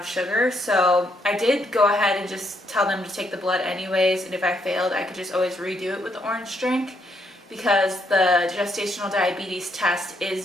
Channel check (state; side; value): normal; both; correlation 0.74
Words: sugar. So I did go ahead and just tell them to take the blood anyways, and if I failed, I could just always redo it with the orange drink, because the gestational diabetes test